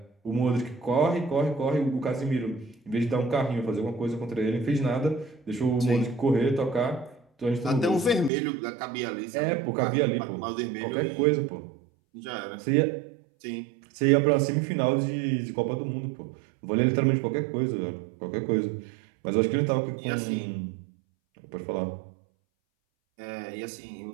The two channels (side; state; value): left; drops out; at 8.3 s